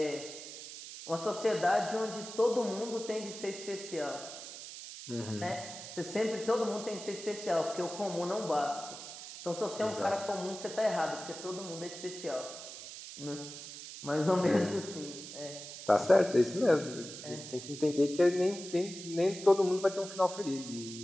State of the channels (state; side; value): noise; right; hiss, 11 dB below the sound